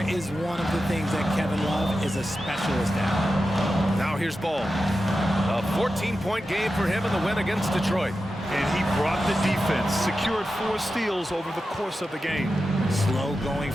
is one of the things that Kevin Love is a specialist at. Now here's Ball. A 14-point game for him in the win against Detroit. And he brought the defense, secured 4 steals over the course of the game. Slow going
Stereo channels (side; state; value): both; normal; correlation 0.91